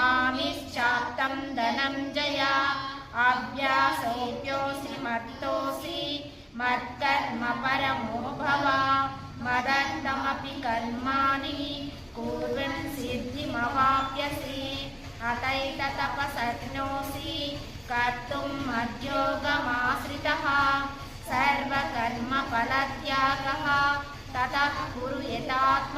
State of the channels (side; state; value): both; identical; correlation 1.00